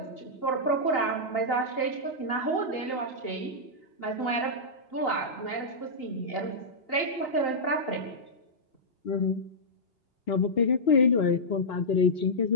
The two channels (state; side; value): late; right; 2.8 ms